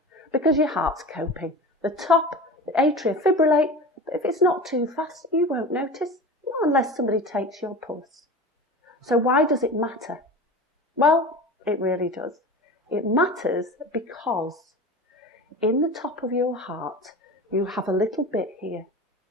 because your heart's coping. The top, the atria fibrillate, but if it's not too fast, you won't notice. Not unless somebody takes your pulse. So why does it matter? Well, it really does. It matters because in the top of your heart, you have a little bit here,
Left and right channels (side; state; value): both; normal; correlation 0.33